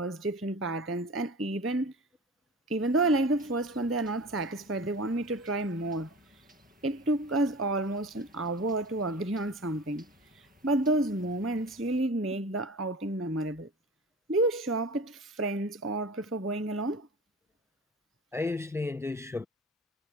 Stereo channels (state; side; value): normal; both; correlation 0.36